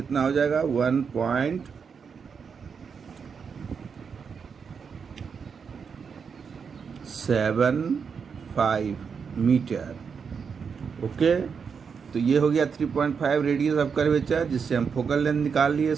हो जाएगा? 1.75 मीटर। ओके, तो ये हो गया 3.5 रेडियस ऑफ कर्वेचर, जिससे हम फोकल लेंथ निकाल लिए।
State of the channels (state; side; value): quieter; left; 6.1 dB